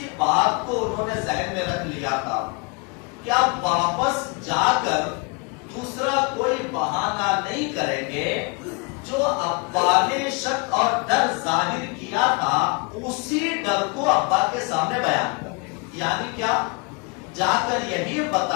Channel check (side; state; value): right; quieter; 30.5 dB